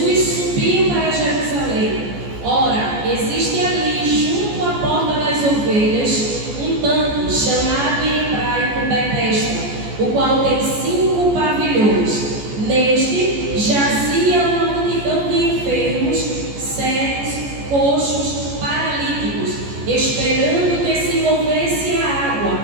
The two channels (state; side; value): late; left; 14 ms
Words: subiu para Jerusalém. Ora, existe ali, junto à porta das ovelhas, um tanque chamado em hebraico Betesda, o qual tem 5 pavilhões. Neste jazia uma multidão de enfermos, cegos, coxos, paralíticos, esperando que se movesse a água.